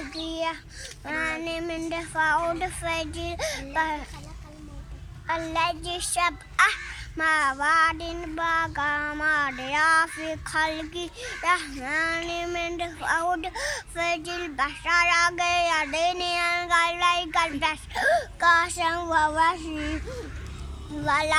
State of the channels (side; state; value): both; identical; correlation 1.00